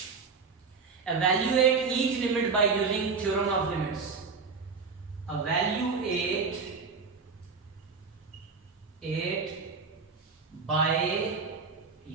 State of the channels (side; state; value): left; quieter; 5.0 dB